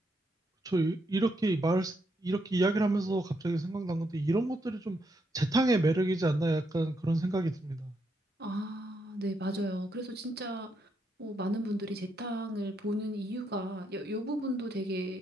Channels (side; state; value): both; normal; correlation 0.78